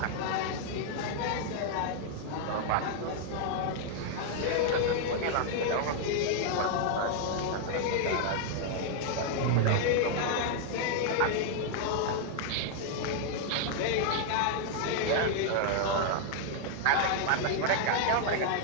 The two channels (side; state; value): both; different; correlation 0.00